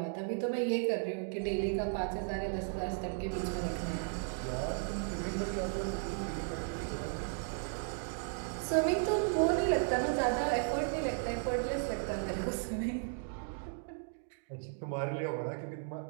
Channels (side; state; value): left; silent; 54 dB below the other